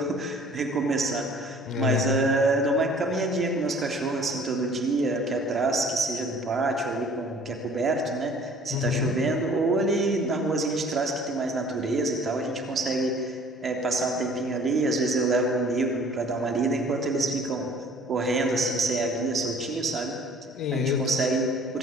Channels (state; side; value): normal; both; correlation 0.52